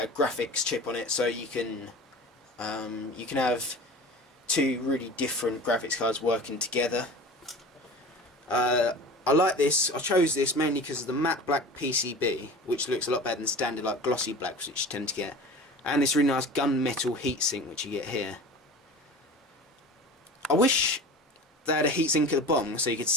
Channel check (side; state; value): both; normal; correlation 0.37